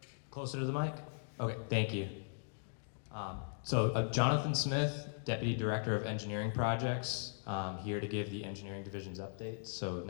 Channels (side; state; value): right; silent; digital silence